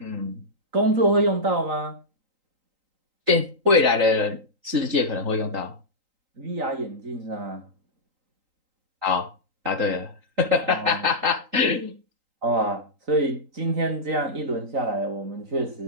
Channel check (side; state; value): left; late; 3.8 ms